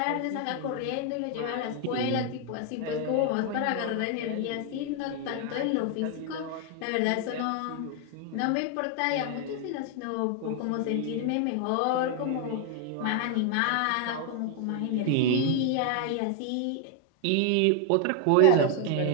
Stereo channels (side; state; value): both; different; correlation 0.00